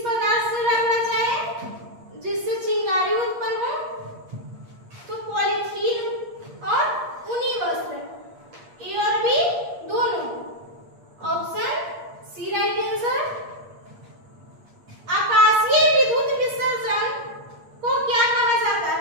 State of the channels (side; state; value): left; late; 8.6 ms